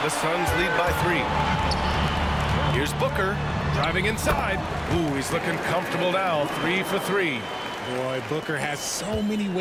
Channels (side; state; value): both; identical; correlation 1.00